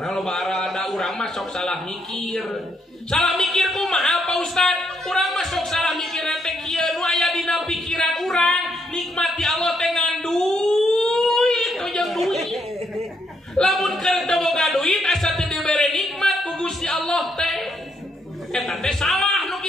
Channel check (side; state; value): both; normal; correlation 0.75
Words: Nah loba aral da urang mah sok salah mikir. Salah mikir kumaha Pak Ustad? Urang mah sok salah mikir teh kieu nu aya dina pikiran urang nikmati Allah teh ngan duit, tojang duit. Lamun keur teu boga duit asa teu dibere nikmat ku Gusti Allah teh. Eta teh salah nu